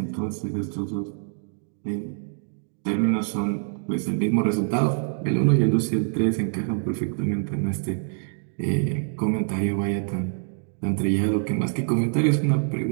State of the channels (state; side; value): silent; left; digital silence